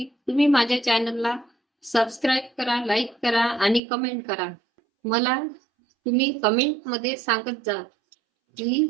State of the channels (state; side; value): drops out; left; at 3.8 s